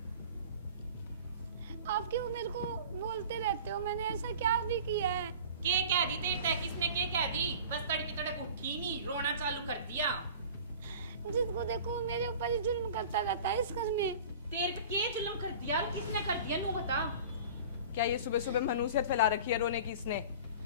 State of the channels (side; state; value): both; inverted; correlation -0.40